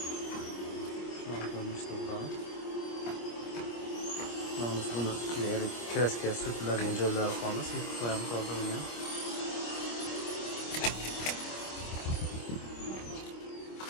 shunday ko'rinishda bo'ladi. Mana buni kraska surtiladigan joylari qolmas, yutib qo'yamiz oldinga.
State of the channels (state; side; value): late; right; 25 ms